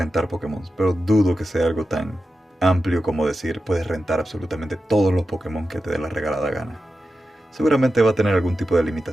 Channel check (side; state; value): both; normal; correlation 0.91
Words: Pokémon, pero dudo que sea algo tan amplio como decir puedes rentar absolutamente todos los Pokémon que te dé la regalada gana. Seguramente va a tener algún tipo de